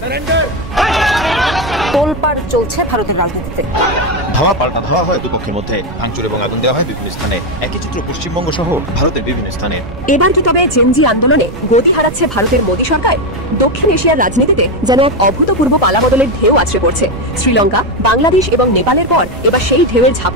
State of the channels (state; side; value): noise; right; rumble, 12 dB below the sound